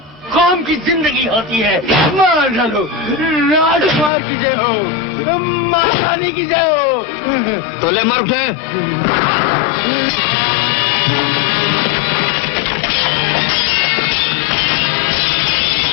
कौम की जिंदगी होती है। मार डालो। राजकुमार की जय हो, महारानी की जय हो। तो ले मार उठे।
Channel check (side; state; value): right; drops out; at 4.1 s